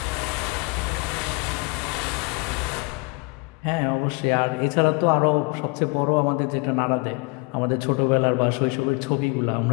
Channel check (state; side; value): quieter; right; 28.3 dB